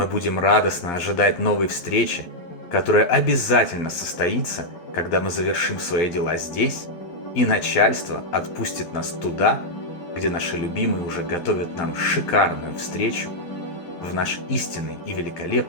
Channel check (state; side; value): late; right; 12 ms